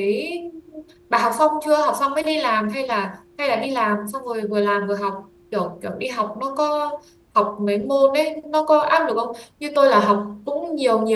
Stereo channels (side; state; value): both; identical; correlation 1.00